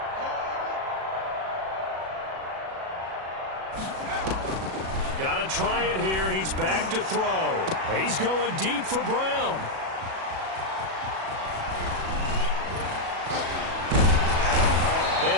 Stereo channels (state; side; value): late; left; 37 ms